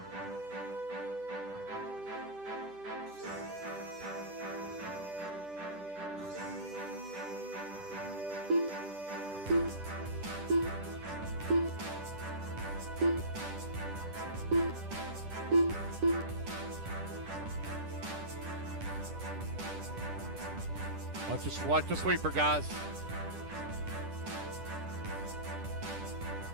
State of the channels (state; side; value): late; left; 10 ms